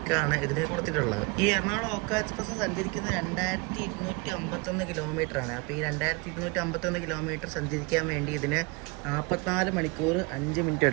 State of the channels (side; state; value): left; quieter; 27.7 dB